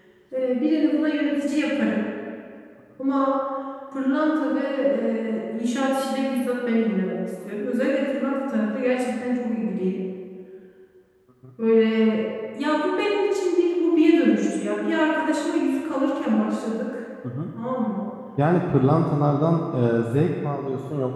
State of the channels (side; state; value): both; identical; correlation 1.00